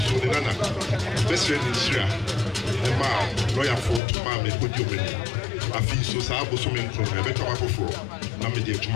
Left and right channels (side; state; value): right; drops out; at 4.0 s